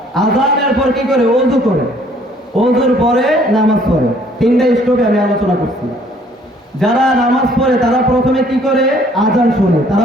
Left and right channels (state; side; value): normal; both; correlation 0.60